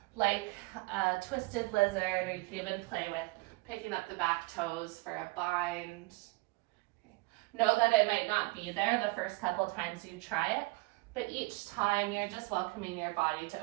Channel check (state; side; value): quieter; left; 25.1 dB